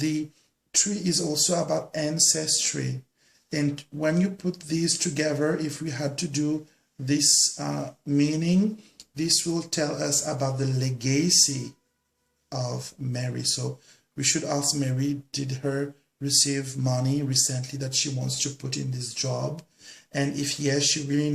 tree is also about ancestry. And when you put these together, if we had to do this meaning, this will tell us about the legacy of Mary. So we should ask Mary, did her receive money recently that she wants to put in this job? And if yes, she really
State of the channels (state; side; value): identical; both; correlation 1.00